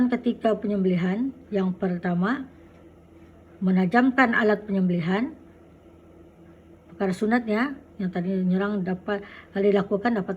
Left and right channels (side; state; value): both; identical; correlation 1.00